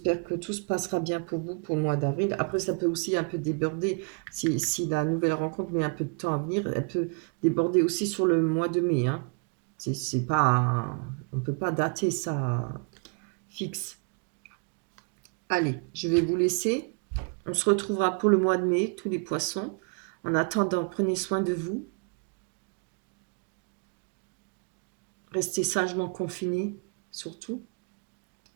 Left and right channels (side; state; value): left; quieter; 39.2 dB